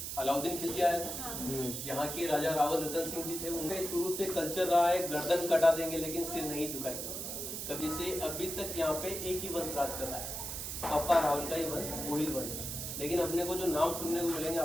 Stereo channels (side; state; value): right; noise; hiss, 5 dB below the sound